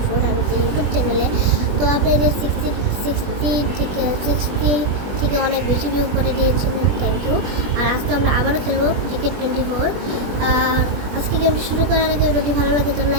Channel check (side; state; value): left; late; 20 ms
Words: আমাদের ইউটিউব চ্যানেলে। তো আপনাদের 60 থেকে অনেক বেশি ভিউ করে দিয়েছিলেন, থ্যাংক ইউ। আর আজকে আমরা আবারও খেলবো টিকেট 24। আর আজকে গেমটি শুরু করার আগে ভিডিওটি ভালো লাগে তো